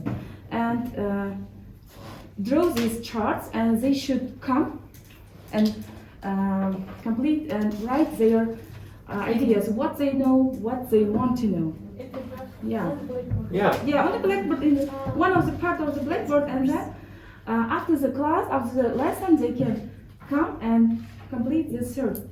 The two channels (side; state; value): both; identical; correlation 1.00